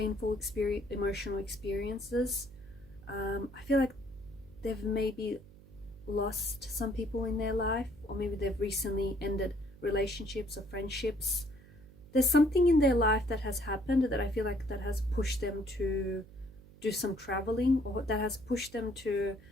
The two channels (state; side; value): noise; right; hum, 21 dB below the sound